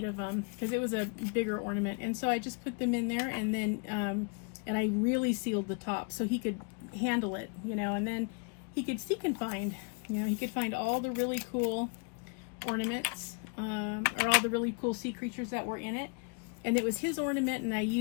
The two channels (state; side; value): quieter; right; 36.0 dB